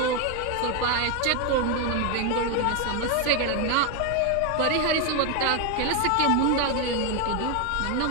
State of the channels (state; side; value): different; both; correlation 0.01